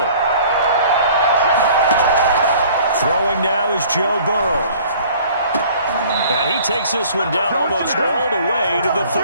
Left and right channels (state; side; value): inverted; both; correlation -0.51